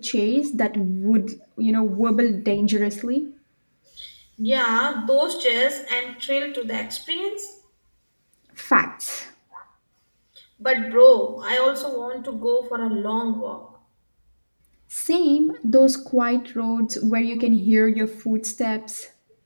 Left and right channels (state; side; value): inverted; both; correlation -1.00